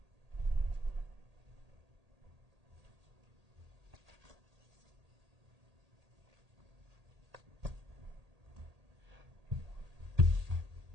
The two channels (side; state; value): left; late; 1.8 ms